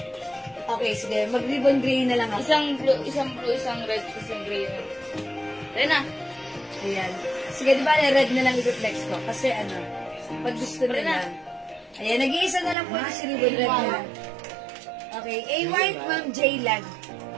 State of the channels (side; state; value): left; drops out; at 12.8 s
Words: Okay, sige. Mag-ribbon gray na lang ako. Isang blue, isang red, isang gray. Ayan na. Ayan. Sige, di ba red na lang i-reflex ko? Kasi ano, pag gusto nila. Ayan, nag-iisa na lang po ito si ribbon red na lang. Okay, A white, Ma'am J Lag.